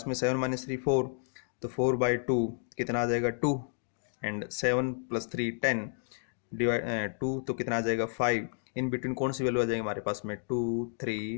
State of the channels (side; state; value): right; silent; 57 dB below the other